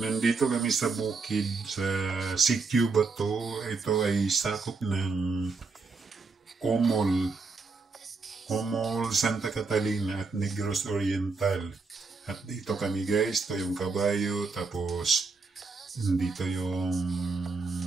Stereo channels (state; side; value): quieter; left; 4.2 dB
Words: kami sa bukid, sa Sitio Bato. Ito ay sakop ng Comol, Santa Catalina at Negros Oriental. At dito kami guys, ito yung kabayo, tapos dito yung